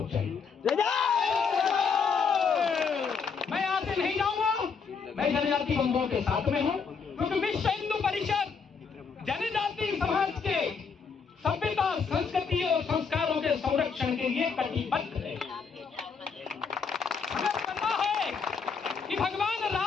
जाएंगे। मैं यहां से नहीं जाऊंगा, मैं जनजाति बंधुओं के साथ में हूं, क्योंकि विश्व हिंदू परिषद जनजाति समाज के सभ्यता, संस्कृति और संस्कारों के संरक्षण के लिए कटिबद्ध है। हमें पता है कि भगवान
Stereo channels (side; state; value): right; quieter; 5.7 dB